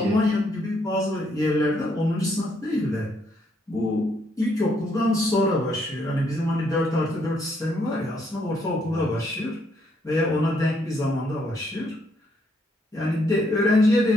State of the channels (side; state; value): both; normal; correlation 0.72